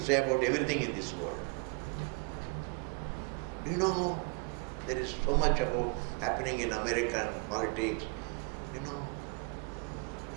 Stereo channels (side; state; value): left; quieter; 32.9 dB